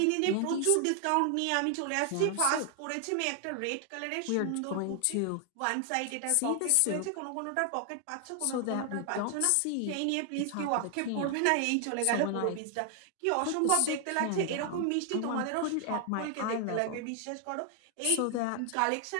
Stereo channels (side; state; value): both; different; correlation 0.00